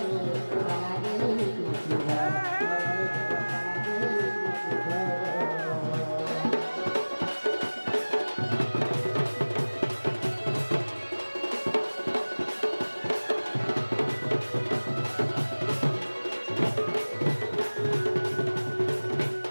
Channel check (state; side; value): inverted; both; correlation -1.00